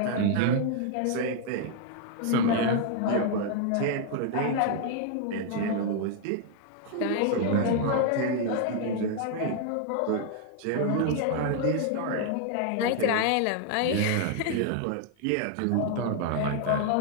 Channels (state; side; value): different; both; correlation 0.00